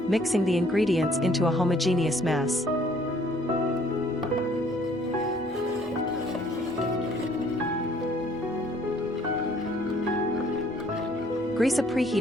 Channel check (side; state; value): both; normal; correlation 0.61